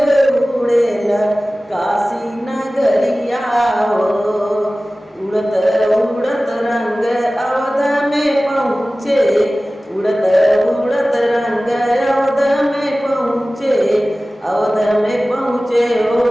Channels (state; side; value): normal; both; correlation 0.97